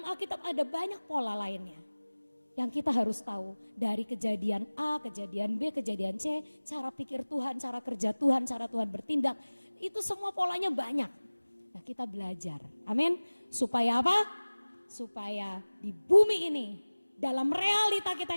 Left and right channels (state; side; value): inverted; both; correlation -1.00